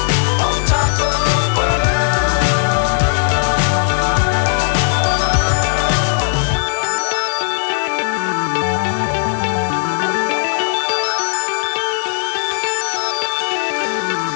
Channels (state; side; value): silent; right; digital silence